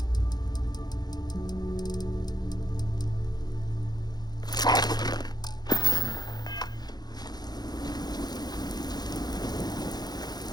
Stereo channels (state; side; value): late; right; 0.20 ms